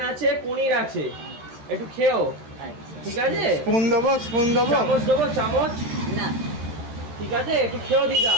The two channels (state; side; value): late; left; 13 ms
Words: আছে, পনির আছে, একটু খেও। ঠিক আছে, স্পুন দেবো? চামচ দেবো? চামচ না, ঠিক আছে, একটু খেও দিদা।